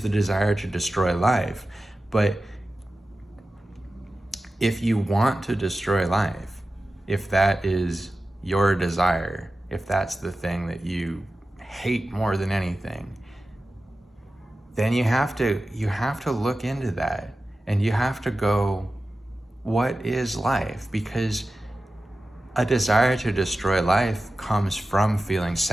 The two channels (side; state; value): both; normal; correlation 0.94